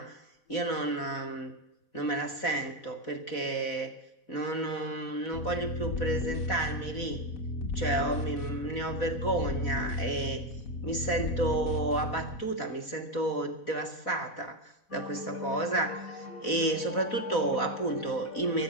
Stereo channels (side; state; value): right; late; 4.1 ms